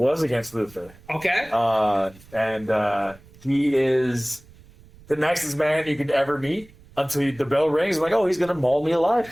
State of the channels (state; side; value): noise; right; rumble, 24 dB below the sound